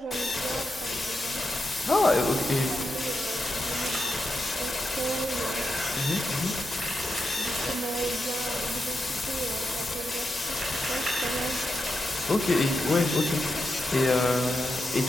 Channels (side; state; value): both; normal; correlation 0.87